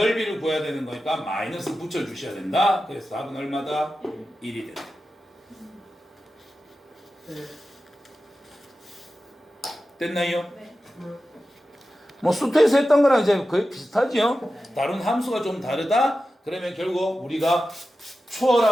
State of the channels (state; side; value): normal; both; correlation 0.93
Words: 구해야 되는 거니까 마이너스 붙여주셔야 된다. 그래서 답은 얼마다? 1이 된다. 됐나요? 네. 뭐 수트에서 했던 거랑 이제 거의 비슷하죠. 다른 함수가 좀 다르다. 그러면 결국 우리가